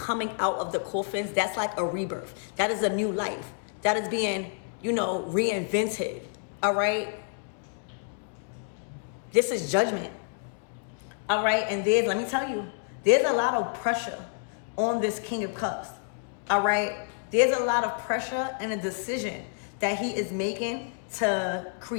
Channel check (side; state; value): right; silent; digital silence